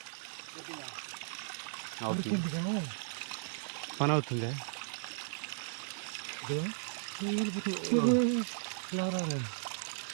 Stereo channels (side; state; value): left; silent; 54 dB below the other